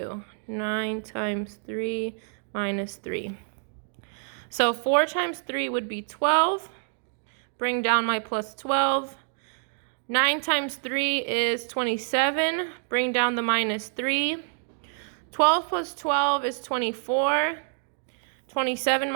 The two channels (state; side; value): silent; left; digital silence